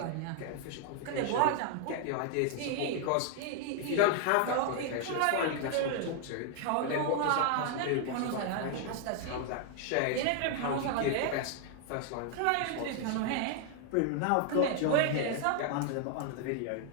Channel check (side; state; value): both; different; correlation 0.00